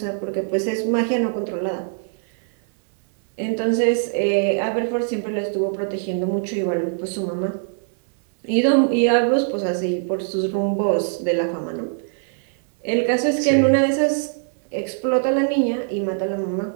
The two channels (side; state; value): left; silent; 64 dB below the other